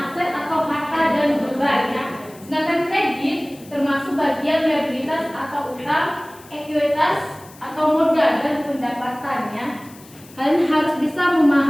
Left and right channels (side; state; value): left; noise; hiss, 23 dB below the sound